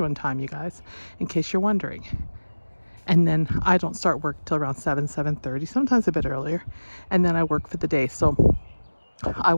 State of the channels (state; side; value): inverted; both; correlation -1.00